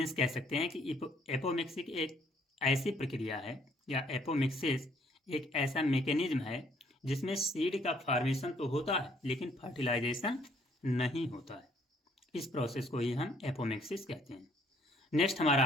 कह सकते हैं कि एपोमिक्सिस एक ऐसी प्रक्रिया है या एपोमिक्सिस एक ऐसा मैकेनिज्म है जिसमें सीड का फॉर्मेशन तो होता है लेकिन फर्टिलाइजेशन नहीं होता है। इस प्रोसेस को ही हम एपोमिक्सिस कहते हैं। नेक्स्ट हमारा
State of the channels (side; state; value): both; normal; correlation 0.64